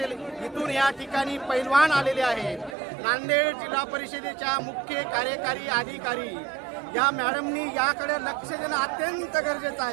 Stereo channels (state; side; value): drops out; left; at 2.8 s